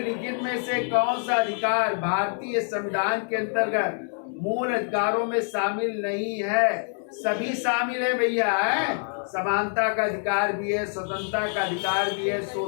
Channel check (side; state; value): right; silent; 61 dB below the other